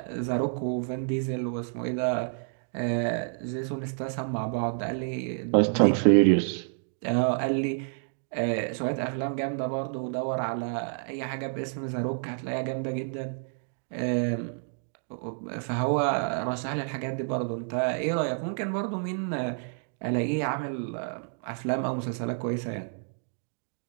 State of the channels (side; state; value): left; silent; 58 dB below the other